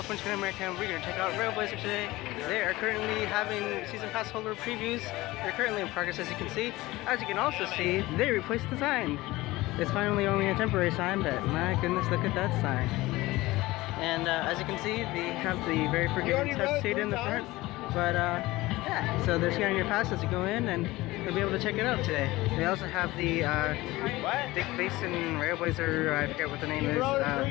American. We're going to check out RailBlazer today. They are currently having season pass holder previews. They're currently in progress, as you can see. As you can also see, they replaced the sign. It's finally only a temporary sign, but my goodness, look at that sign. And as you can see, they have the very forgiving test seat in the front. But yeah, so they're scanning your pass as you go in, and you'll be able to check it out today. They also have the Big Basin RailBlazer, I forget what the name is,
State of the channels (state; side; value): quieter; right; 19.2 dB